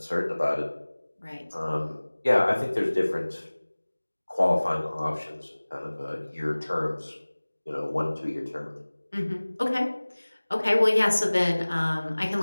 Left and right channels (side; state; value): both; inverted; correlation -1.00